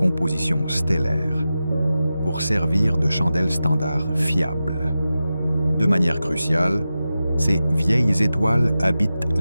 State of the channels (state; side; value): inverted; both; correlation -0.93